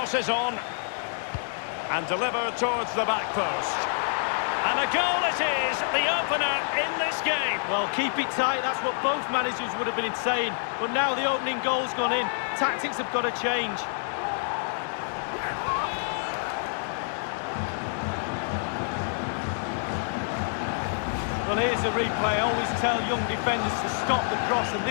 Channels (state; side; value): silent; right; digital silence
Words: is on. And delivered towards the back post. And a goal it is, the opener in this game. Well, keep it tight, that's what both managers would have been saying. But now the opening goal's gone in. Tactics have got to change. Well, here's a replay. I always tell young defenders to stop the cross, and